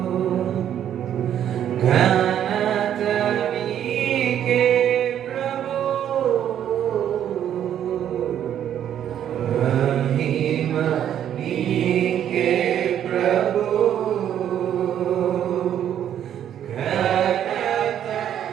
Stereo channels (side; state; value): left; quieter; 10.1 dB